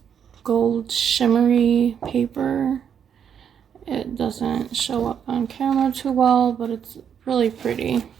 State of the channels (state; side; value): quieter; left; 8.1 dB